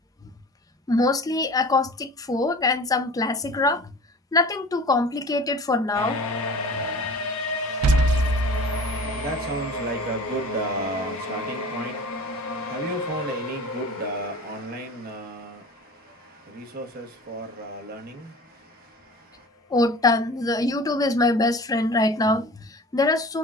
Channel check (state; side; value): normal; both; correlation 0.40